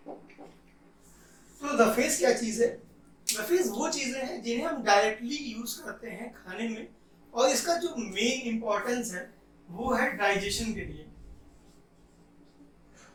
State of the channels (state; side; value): identical; both; correlation 1.00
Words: तो रफेज क्या चीज़ है? रफेज वो चीज़ें हैं जिन्हें हम डायरेक्टली यूज़ करते हैं खाने में, और इसका जो मेन इंपॉर्टेंस है वो है डाइजेशन के लिए।